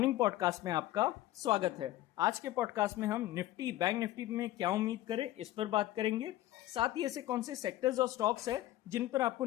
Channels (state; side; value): quieter; right; 15.2 dB